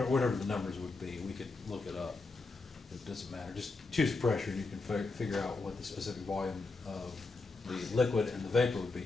the numbers would be, we could look it up. It doesn't matter. Just choose pressure and you can figure out what the specific volume of the liquid and the vapor would be.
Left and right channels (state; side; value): quieter; right; 3.7 dB